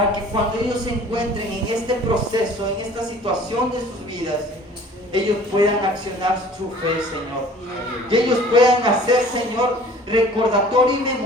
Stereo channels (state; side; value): normal; both; correlation 0.48